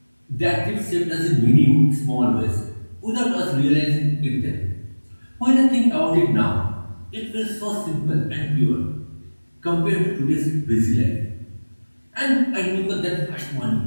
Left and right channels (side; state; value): both; inverted; correlation -1.00